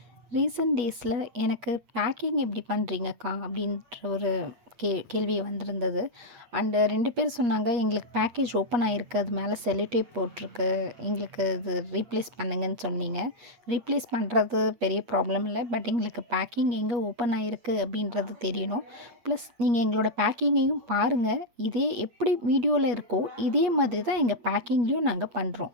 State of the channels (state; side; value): late; left; 8.4 ms